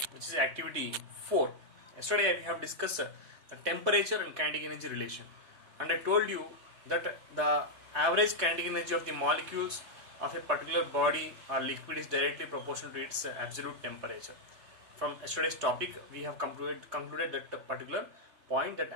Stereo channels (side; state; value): left; late; 3.4 ms